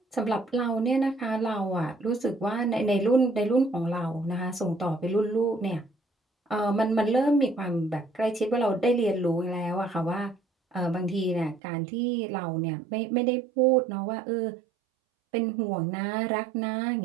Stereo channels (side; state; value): left; drops out; at 11.6 s